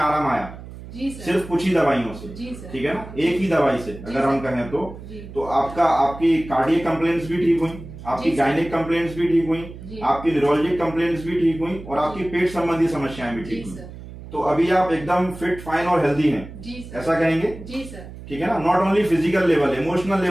आया। जी सर। सिर्फ कुछ ही दवाइयों से। जी सर। ठीक है ना, एक ही दवाई से अगर हम कहें तो आपकी कार्डियक कंप्लेंट्स भी ठीक हुई, आपकी गायनिक कंप्लेंट्स भी ठीक हुई, आपकी न्यूरोलॉजिक कंप्लेंट्स भी ठीक हुई और आपकी पेट संबंधी समस्याएं भी ठीक हुई। तो अभी आप एकदम फिट, फाइन और हेल्दी हैं, ऐसा कहेंगे? जी सर। ठीक है ना, not only physical level, emotional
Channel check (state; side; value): noise; right; hum, 14 dB below the sound